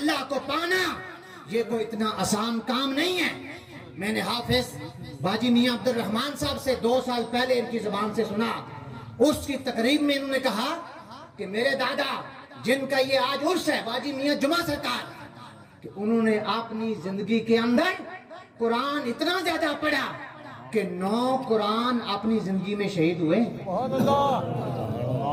کو پانا یہ کوئی اتنا آسان کام نہیں ہے۔ میں نے حافظ باجی میاں عبد الرحمن صاحب سے 2 سال پہلے ان کی زبان سے سنا، اس کی تقریب میں انہوں نے کہا کہ میرے دادا جن کا یہ آج عرس ہے، باجی میاں جمعہ سرکار، کہ انہوں نے اپنی زندگی کے اندر قرآن اتنا زیادہ پڑھا کہ 9 قرآن اپنی زندگی میں شہید ہوئے۔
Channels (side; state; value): both; identical; correlation 1.00